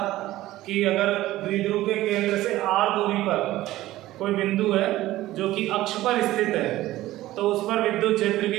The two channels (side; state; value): left; quieter; 16.0 dB